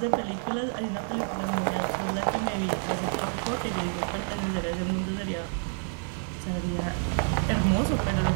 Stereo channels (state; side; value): silent; left; 59 dB below the other